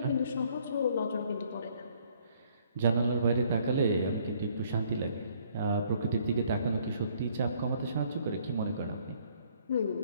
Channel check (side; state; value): both; inverted; correlation -0.63